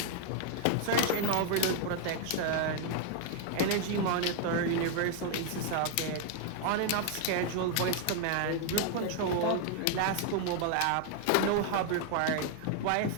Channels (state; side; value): different; both; correlation 0.00